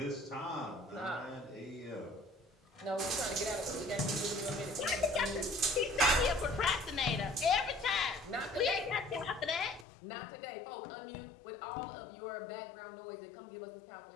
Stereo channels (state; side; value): drops out; right; at 9.9 s